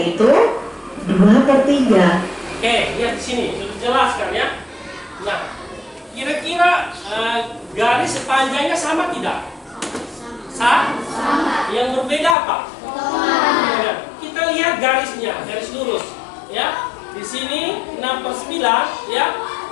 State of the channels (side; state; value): right; drops out; at 12.4 s